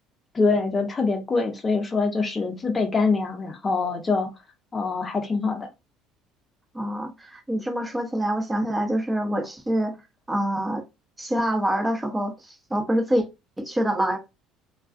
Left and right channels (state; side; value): normal; both; correlation 0.86